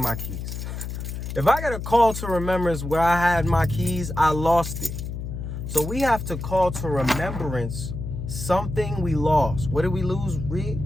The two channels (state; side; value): noise; left; hum, 6 dB below the sound